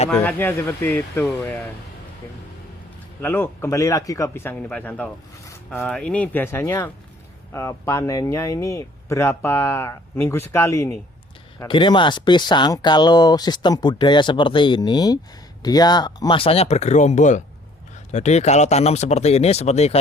seperti itu ya. Lalu kembali lagi ke pisang ini Pak Santo. Ini biasanya panennya ini berapa minggu sekali ini? Gini Mas, pisang kalau sistem budaya seperti ini dia masanya bergerombol. Jadi kalau tanam seperti ini, seperti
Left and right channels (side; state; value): both; normal; correlation 0.57